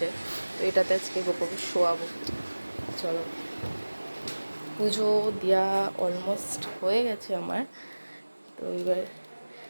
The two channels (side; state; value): both; inverted; correlation -1.00